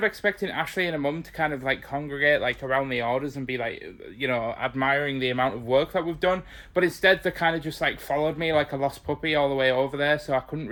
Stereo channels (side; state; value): both; identical; correlation 1.00